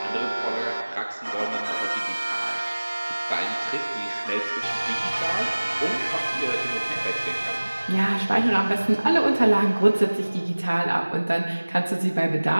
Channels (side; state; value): both; inverted; correlation -1.00